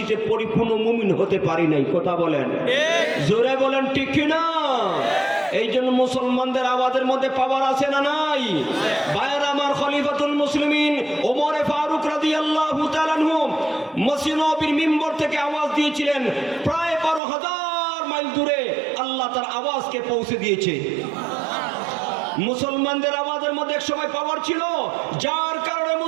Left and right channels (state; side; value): drops out; left; at 17.2 s